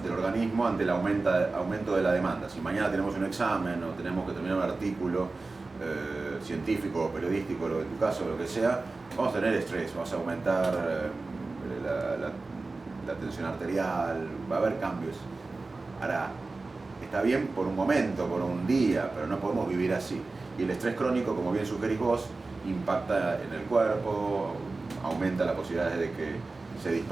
del organismo, ante el aumento de la demanda. Si mañana tenemos un examen o tenemos que terminar un artículo científico o periodístico, en tu caso, lo que sea, vamos a tener estrés, vamos a aumentar la tensión arterial, va a haber cambios. Ahora, está bien por un momento, por un día, pero no podemos vivir así. Y el estrés crónico, como bien sugerís vos, impacta en el cuerpo, aumenta la posibilidad de que se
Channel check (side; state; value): left; quieter; 3.6 dB